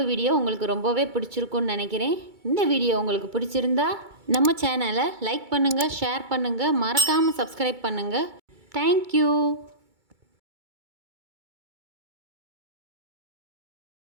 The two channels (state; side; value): late; left; 2.3 ms